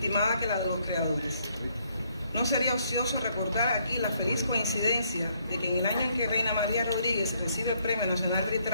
que la de los creadores. No sería ocioso recordar aquí la feliz coincidencia de que en el año en que Reina María Rodríguez recibe el Premio Nacional de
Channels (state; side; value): inverted; both; correlation -0.70